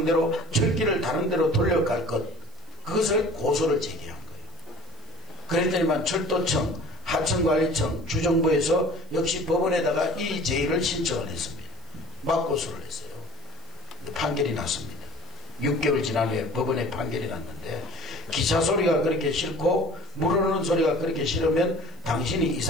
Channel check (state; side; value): noise; right; hiss, 30 dB below the sound